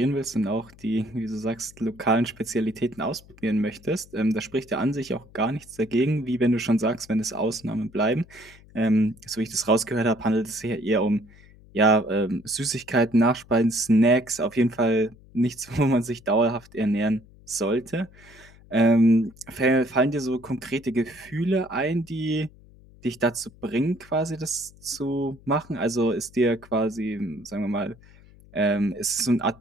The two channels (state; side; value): noise; left; hum, 24 dB below the sound